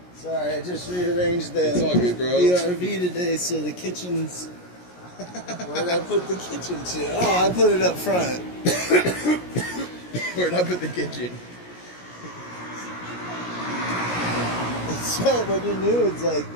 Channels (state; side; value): late; right; 17 ms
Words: Sorry, I just rearranged the It's all good, bro. ERV today, so the kitchen's. Where'd I put the kitchen to? Oh, I put it up front. Where'd I put the kitchen? So when you're new, it's like